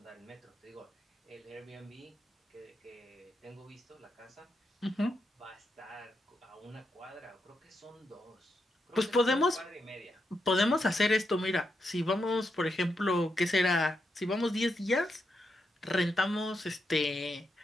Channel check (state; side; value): normal; both; correlation 0.84